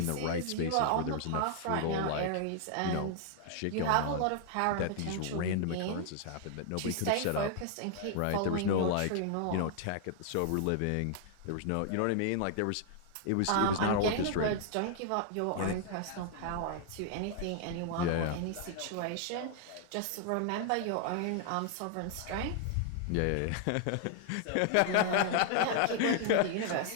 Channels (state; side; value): different; both; correlation 0.00